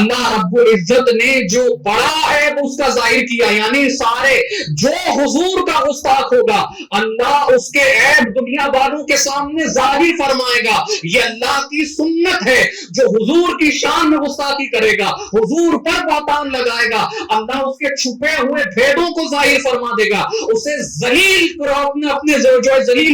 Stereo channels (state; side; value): identical; both; correlation 1.00